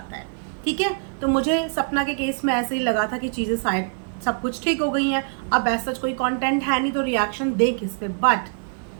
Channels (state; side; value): silent; left; 63 dB below the other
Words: है। ठीक है, तो मुझे सपना के केस में ऐसे ही लगा था कि चीज़ें शायद सब कुछ ठीक हो गई हैं। अब ऐसा कोई कॉन्टेंट है नहीं तो रिएक्शन दे किस पे।